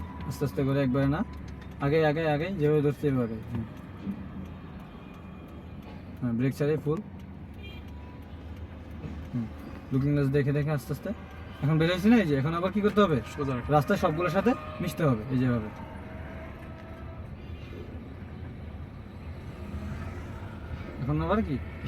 আস্তে আস্তে করে, একবারে না, আগে আগে আগে যেভাবে ধরছি এভাবে, হ্যাঁ ব্রেক ছাড়ি ফুল, লুকিং গ্লাস দেখে দেখে আস্তে আস্তে। এখন বের হয়েছি না, এই যে এখন আবার কি করতে হবে? সোজা রাখো। রাস্তায় সবগুলোর সাথে মিশতে হবে, এই যেভাবে। এখন আবার কি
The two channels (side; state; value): both; identical; correlation 1.00